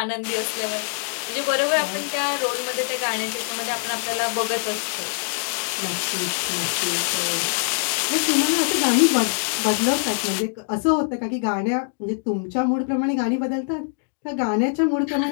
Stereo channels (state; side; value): silent; right; digital silence